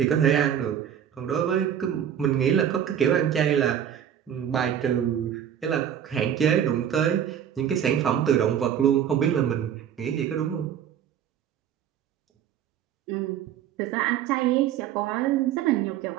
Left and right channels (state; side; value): quieter; left; 9.5 dB